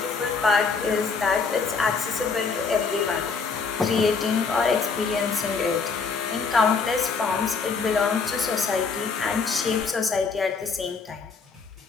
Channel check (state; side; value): quieter; right; 5.0 dB